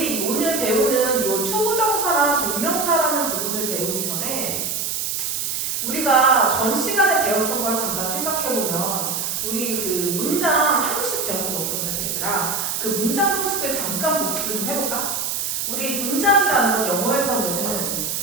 오늘 배우는 이 투부정사나 동명사라는 부분을 배우기 전에 우리가 전 시간에 배웠던 걸 잠깐 생각해보면, 우리 그 문장 형식 배웠던 거 기억나지 얘들아? 그 문장 형식을 잠깐 복습을 좀 해볼까? 우리 문장이라는 건 영어에서는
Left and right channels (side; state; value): right; noise; hiss, 1 dB below the sound